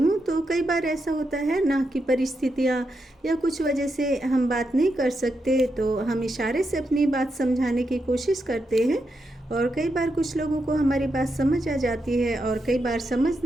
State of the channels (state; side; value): normal; both; correlation 0.84